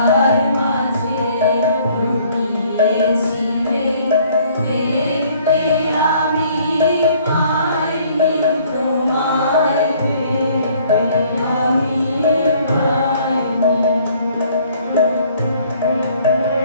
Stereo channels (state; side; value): inverted; both; correlation -0.59